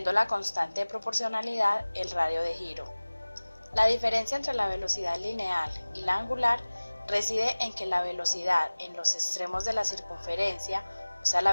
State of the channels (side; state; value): both; inverted; correlation -1.00